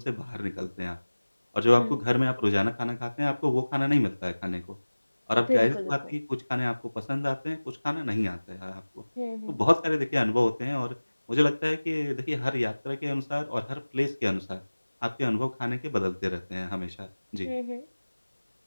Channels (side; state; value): both; inverted; correlation -1.00